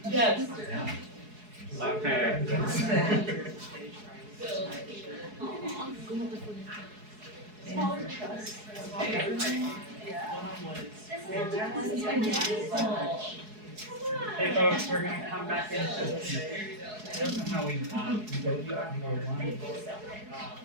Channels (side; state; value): left; late; 4.7 ms